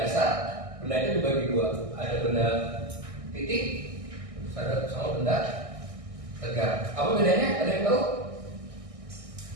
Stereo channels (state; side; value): late; left; 1.6 ms